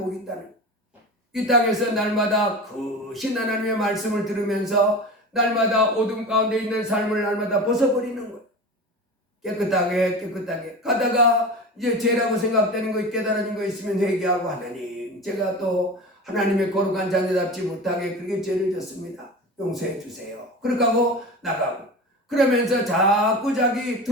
있다는 이 땅에서 날마다 크신 하나님의 말씀을 들으면서 날마다 어둠 가운데 있는 삶을 날마다 벗어버리는 거예요. 깨끗하게 가다가 이제 죄라고 생각되는 거 깨달아진 거 있으면 회개하고 하나님 제가 또 하나님의 거룩한 자녀답지 못하게 그렇게 죄를 졌습니다. 용서해 주세요. 그렇게 하고 나가고 그러면서 자꾸 자기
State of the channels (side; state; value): both; normal; correlation 0.30